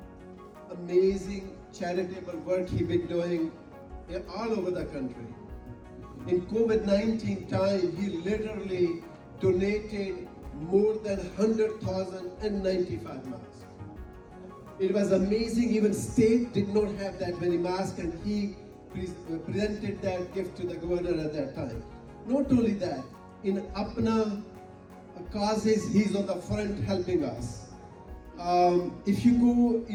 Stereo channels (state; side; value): identical; both; correlation 1.00